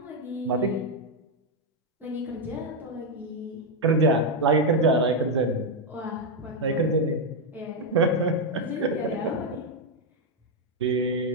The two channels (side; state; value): both; normal; correlation 0.02